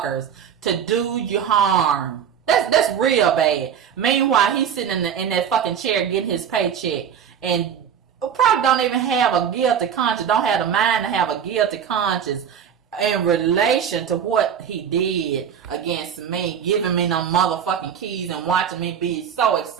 to do you harm. That's real bad. Meanwhile, he's sitting in that fucking chair getting his paycheck and probably don't even have a guilty conscience, don't have the mind to have a guilty conscience in relation to what he did against me, giving me no motherfucking keys and watching me be so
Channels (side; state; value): left; quieter; 8.1 dB